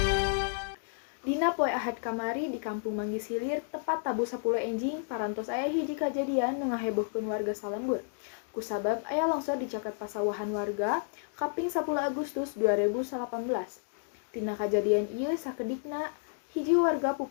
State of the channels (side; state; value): right; silent; digital silence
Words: Dina poe Ahad kamari di Kampung Manggis Hilir tepat tabu 10 enjing parantos aya hiji kajadian nu ngahebohkeun warga salembur. Kusabab aya longsor di caket pasawahan warga kaping 10 Agustus 2018. Tina kajadian ieu sakedikna hiji warga